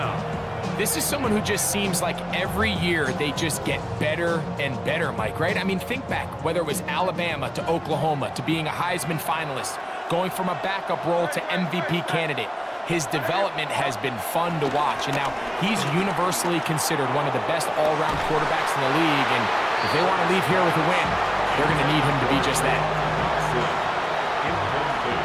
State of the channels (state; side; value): identical; both; correlation 1.00